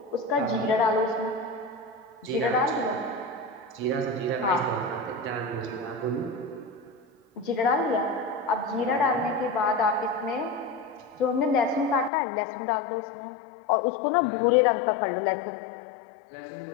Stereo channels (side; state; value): right; drops out; at 12.1 s